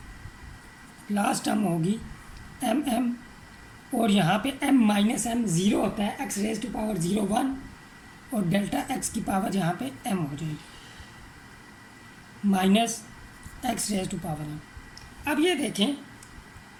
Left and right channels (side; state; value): both; identical; correlation 1.00